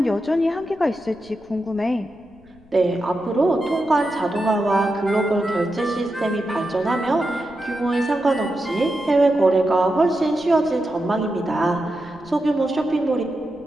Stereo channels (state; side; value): noise; left; rumble, 27 dB below the sound